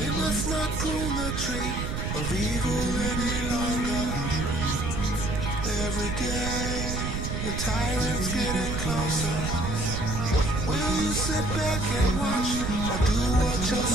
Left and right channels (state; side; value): noise; right; rumble, 3 dB below the sound